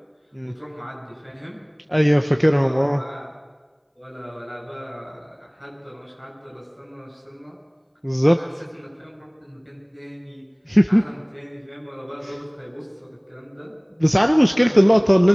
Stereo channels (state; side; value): identical; both; correlation 1.00